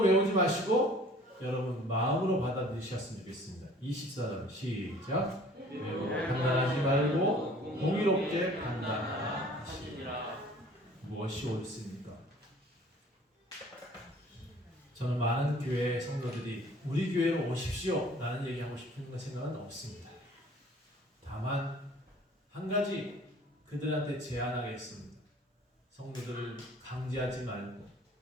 외우지 마시고 여러분 마음으로 받아들이셨으면 좋겠습니다. 24절 시작. 외모로 판단하지 말고 공의롭게 판단하라 하시니라. 무엇이 옳습니까? 저는 많은 교회 성도들이 우리 교회로 오십시오 라는 얘기하고 싶은 생각은 없습니다. 다만 한 가지 그들한테 제안하겠습니다. 성도들을 강제하지 말고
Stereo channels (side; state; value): both; normal; correlation 0.51